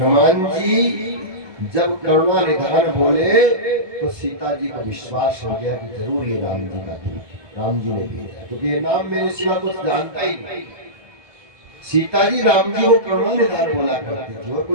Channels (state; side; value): late; left; 1.2 ms